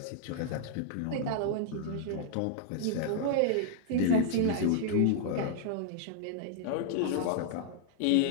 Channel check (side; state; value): both; different; correlation -0.01